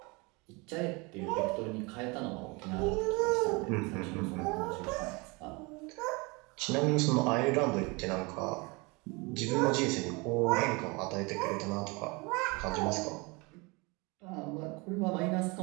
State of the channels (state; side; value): quieter; left; 27.4 dB